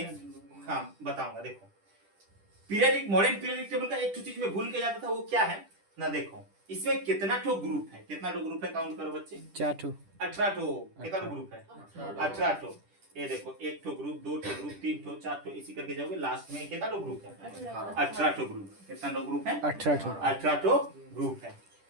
हाँ बताऊंगा। देखो पीरियडिक मॉडर्न पीरियडिक टेबल का एक चीज में भूल के जाता था, वो क्या है ना, देखो इसमें कितना ठो ग्रुप है, कितना ठो ग्रुप है काउंट करो बच्चे, 4 ठो 18 ठो। कितना ठो ग्रुप है? 18 ठो। ये देखो एक ठो ग्रुप, दो ठो ग्रुप, 3 ठो, 4 ठो, इसी करके जाओगे लास्ट में कितना ठो ग्रुप है? 18 ठो ग्रुप। कितना ठो ग्रुप है? 18 ठो 18 ठो ग्रुप है।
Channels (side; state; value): left; late; 10 ms